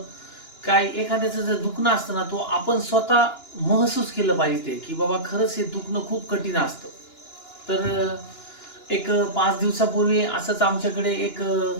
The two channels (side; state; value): right; late; 2.9 ms